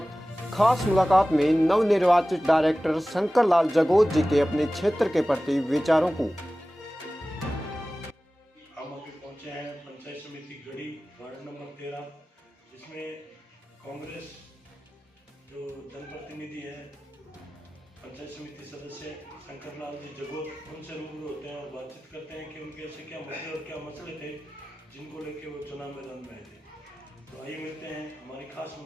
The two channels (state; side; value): normal; both; correlation 0.96